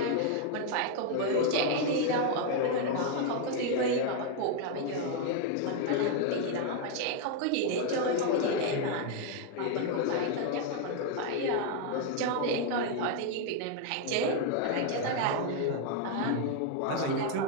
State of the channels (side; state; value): both; different; correlation 0.00